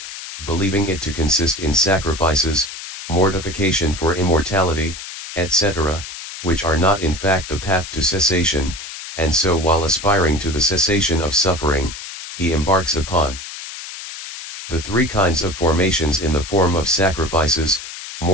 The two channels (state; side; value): noise; left; hiss, 10 dB below the sound